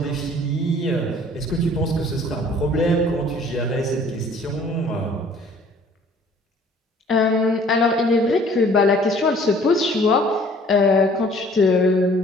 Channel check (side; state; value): both; normal; correlation 0.55